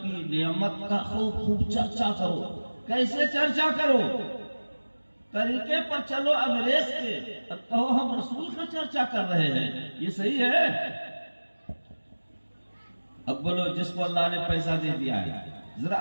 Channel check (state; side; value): inverted; both; correlation -1.00